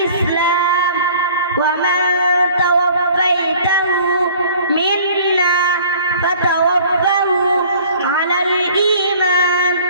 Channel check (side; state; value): both; inverted; correlation -0.50